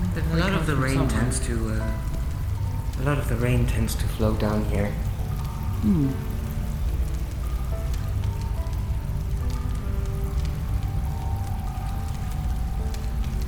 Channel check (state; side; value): identical; both; correlation 1.00